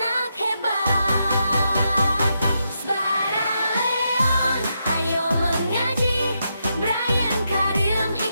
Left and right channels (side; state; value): both; inverted; correlation -0.83